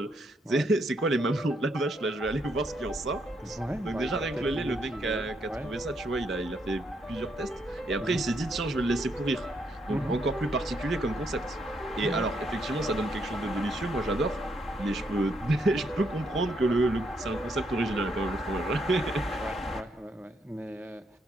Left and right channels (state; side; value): normal; both; correlation 0.75